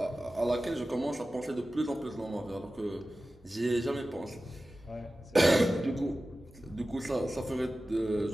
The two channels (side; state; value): both; normal; correlation 0.95